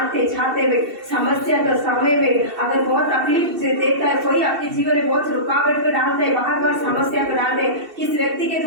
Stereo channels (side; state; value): left; late; 2.7 ms